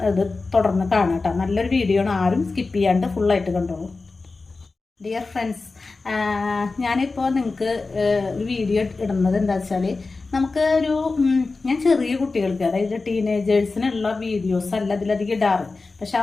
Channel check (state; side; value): quieter; right; 3.8 dB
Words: ഇത് തുടർന്ന് കാണാം കേട്ടോ. നല്ലൊരു വീഡിയോ ആണ്, ആരും സ്കിപ്പ് ചെയ്യാണ്ട് ഫുള്ളായിട്ട് കണ്ടോളൂ. ഡിയർ ഫ്രണ്ട്സ്, ഞാനിപ്പോൾ നിങ്ങൾക്ക് ഒരു വീഡിയോ ഇടുന്നത് എന്താ വെച്ചാൽ, നമുക്ക് ഞാൻ ചെറിയ കുട്ടികൾക്ക്, അതായത് ടീനേജേഴ്സിനുള്ള വീഡിയോസ് അല്ല ഇതിലധികം ഇടാറ്. പക്ഷെ